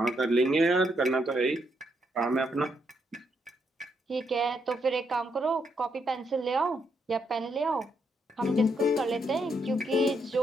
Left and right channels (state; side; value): normal; both; correlation 0.77